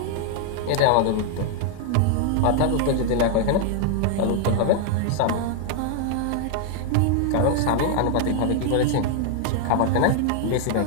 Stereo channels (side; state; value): both; different; correlation 0.00